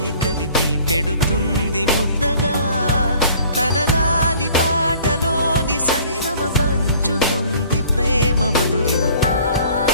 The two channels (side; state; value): both; inverted; correlation -0.52